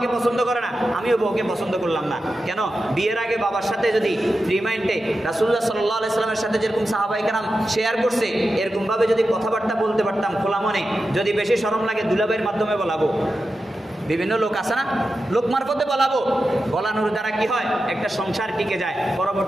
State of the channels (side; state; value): both; normal; correlation 0.91